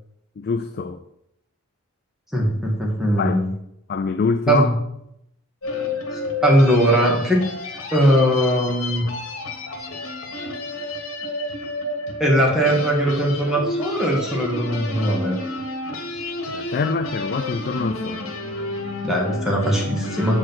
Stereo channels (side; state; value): both; normal; correlation 0.51